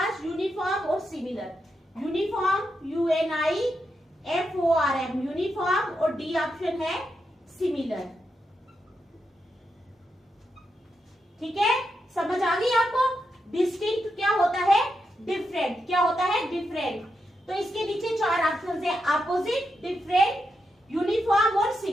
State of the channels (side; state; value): both; normal; correlation 0.85